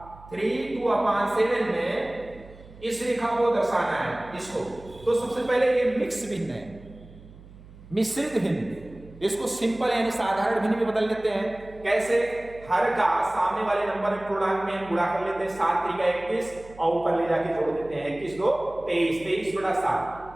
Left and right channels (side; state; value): right; noise; hum, 20 dB below the sound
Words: 3 2/7 में इस रेखा को दर्शाना है इसको। तो सबसे पहले ये मिक्स भिन्न है, मिश्रित भिन्न, इसको सिंपल यानी साधारण भिन्न में बदल लेते हैं। कैसे? हर का सामने वाले नंबर पूर्णांक में गुणा कर लेते हैं, 7 3 21 और ऊपर ले जाके जोड़ देते हैं, 21 2 23,